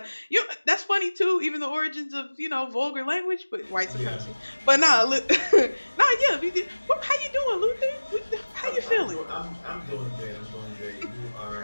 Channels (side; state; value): both; inverted; correlation -1.00